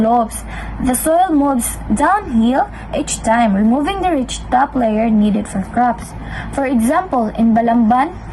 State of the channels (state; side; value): identical; both; correlation 1.00